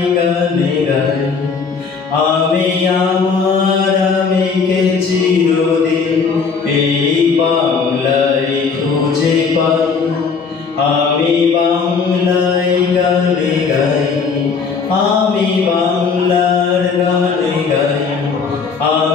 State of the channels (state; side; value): quieter; right; 5.4 dB